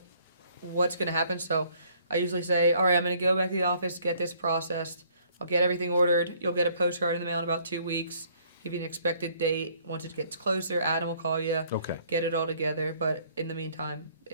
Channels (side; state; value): both; inverted; correlation -0.62